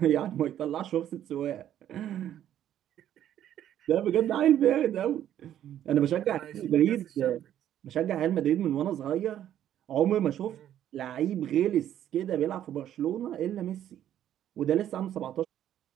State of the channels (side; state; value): left; quieter; 11.1 dB